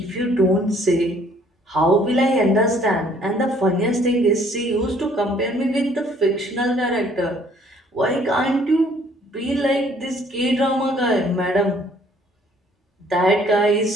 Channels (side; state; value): both; normal; correlation 0.60